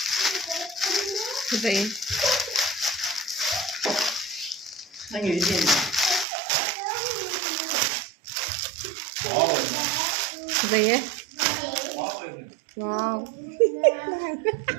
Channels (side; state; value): left; drops out; at 6.2 s